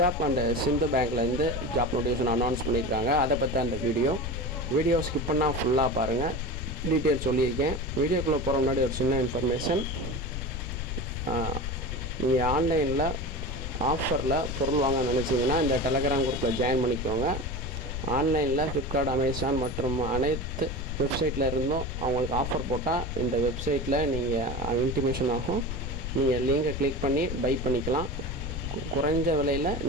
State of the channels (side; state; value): left; noise; rumble, 5 dB below the sound